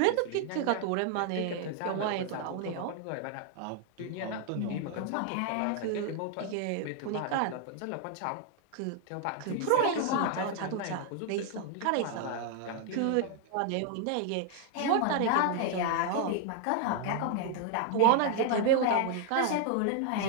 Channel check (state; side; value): different; both; correlation 0.00